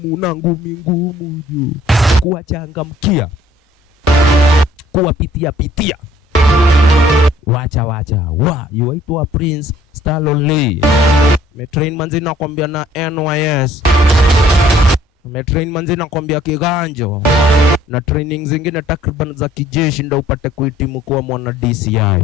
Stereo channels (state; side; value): normal; both; correlation 0.58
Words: na ngumi ngumu juu. Kuwachangamkia. Kuwapitia. Wacha. Yuaitwa Prince Stallone Lee. Metrain manzi nakwambia na NYS. Metrain manzi nakwambia kiganjo. Na training zingine takriban za kijeshi ndio upate kuhitimu kuwa mwana